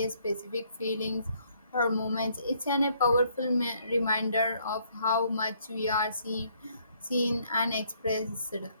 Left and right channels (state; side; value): inverted; both; correlation -0.67